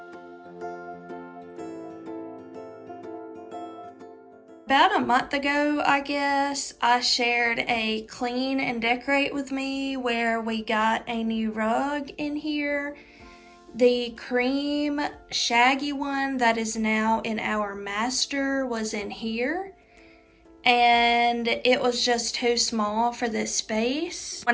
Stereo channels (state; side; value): identical; both; correlation 1.00